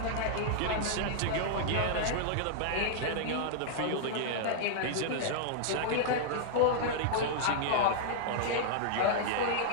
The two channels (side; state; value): both; different; correlation -0.01